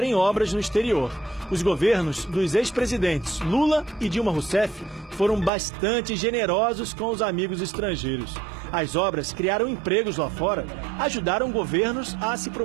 obras no exterior. Os governos dos ex-presidentes Lula e Dilma Rousseff foram bastante generosos com os amigos estrangeiros. As obras criaram empregos lá fora, ajudaram governos a se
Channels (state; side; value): drops out; left; at 5.5 s